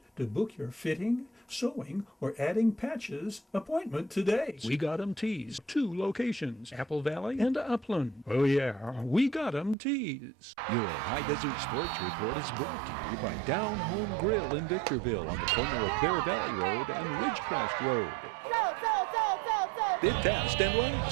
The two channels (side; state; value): left; drops out; at 9.8 s